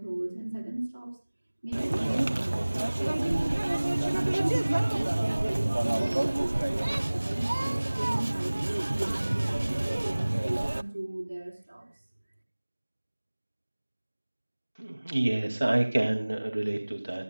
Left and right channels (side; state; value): both; inverted; correlation -1.00